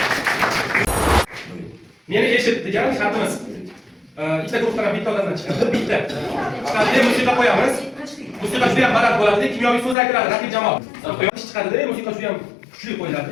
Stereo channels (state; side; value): drops out; right; at 10.0 s